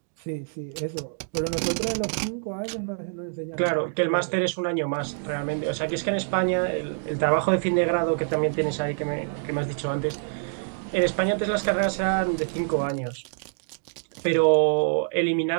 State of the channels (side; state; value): left; silent; digital silence